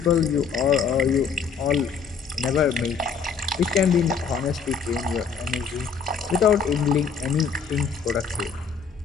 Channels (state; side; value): quieter; right; 5.9 dB